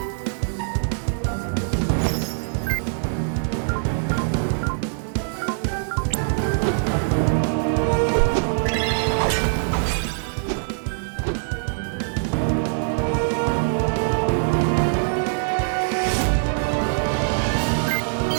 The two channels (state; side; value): silent; left; 63 dB below the other